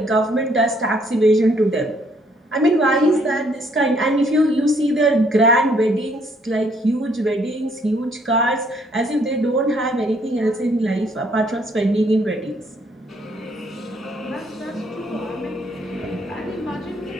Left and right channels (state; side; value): normal; both; correlation 0.66